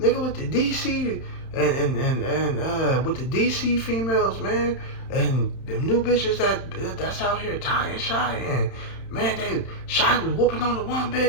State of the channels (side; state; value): right; late; 31 ms